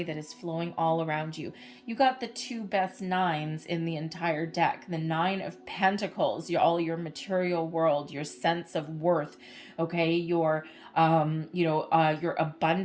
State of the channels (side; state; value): both; identical; correlation 1.00